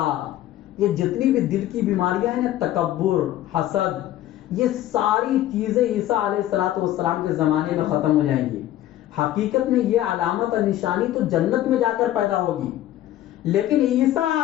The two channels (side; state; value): right; quieter; 13.5 dB